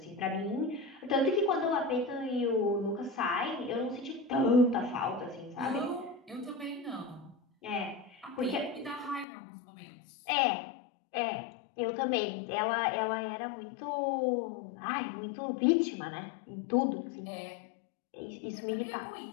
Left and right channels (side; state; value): right; drops out; at 9.2 s